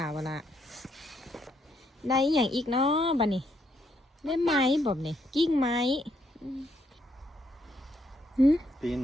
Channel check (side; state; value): both; normal; correlation 0.74